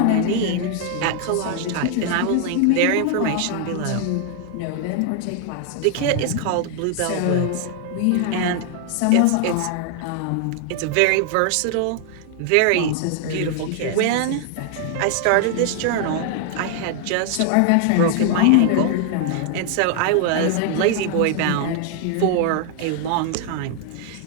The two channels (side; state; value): both; different; correlation 0.00